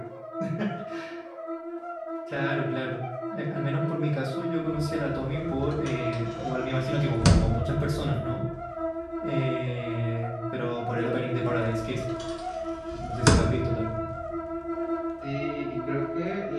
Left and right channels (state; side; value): identical; both; correlation 1.00